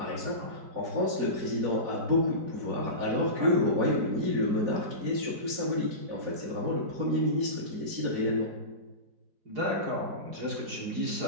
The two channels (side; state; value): left; late; 4.8 ms